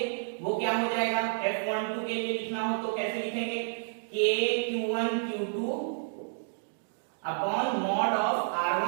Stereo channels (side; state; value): left; silent; digital silence